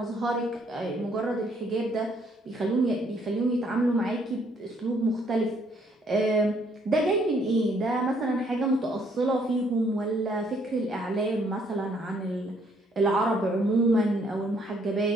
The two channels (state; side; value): normal; both; correlation 0.67